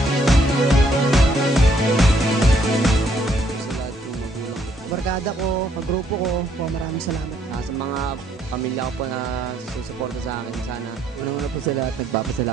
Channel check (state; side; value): normal; both; correlation 0.69